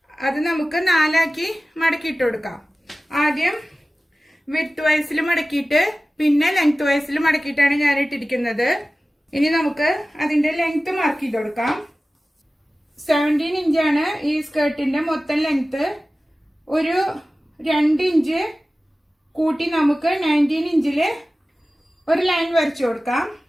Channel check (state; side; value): normal; both; correlation 0.96